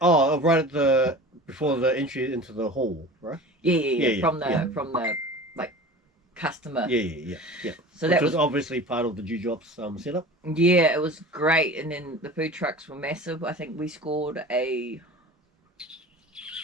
at before the entry into the hall, right? Yeah. From the like customer. Yeah. So which that was obviously part of the Judops setup. Yeah, it was great, and then the food trucks were massive. I think we scored a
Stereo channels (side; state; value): both; normal; correlation 0.37